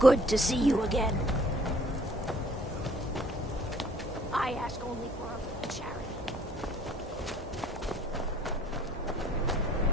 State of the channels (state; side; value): normal; both; correlation 0.58